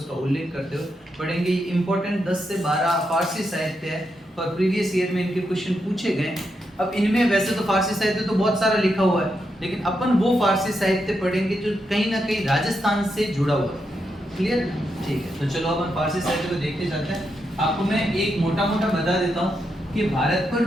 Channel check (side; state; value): both; normal; correlation 0.83